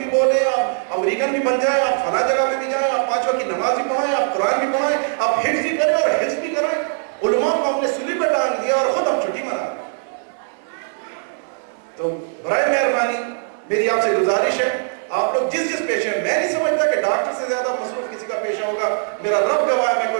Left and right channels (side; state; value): left; silent; digital silence